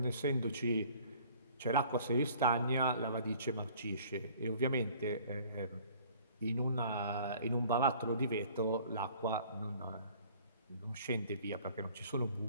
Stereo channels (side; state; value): both; inverted; correlation -0.53